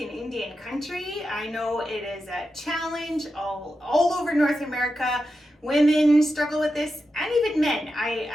Indian country. I know it is a challenge all over North America. Women struggle with this, and even men.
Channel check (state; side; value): normal; both; correlation 0.89